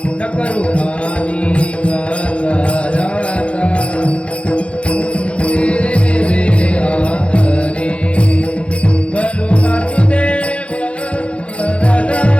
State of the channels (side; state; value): right; late; 0.060 ms